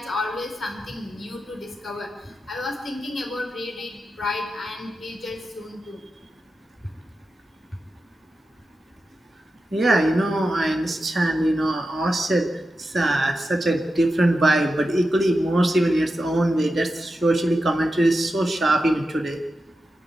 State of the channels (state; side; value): normal; both; correlation 0.90